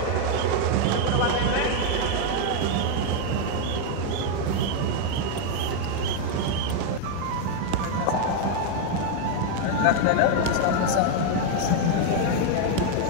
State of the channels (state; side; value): different; both; correlation 0.00